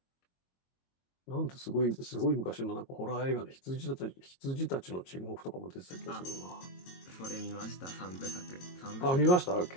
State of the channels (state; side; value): late; right; 22 ms